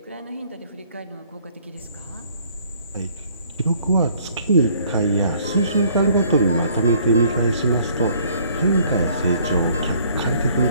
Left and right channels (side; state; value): both; inverted; correlation -0.60